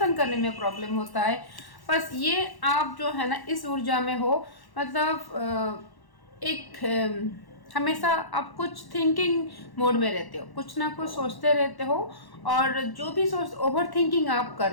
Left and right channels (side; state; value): right; late; 1.1 ms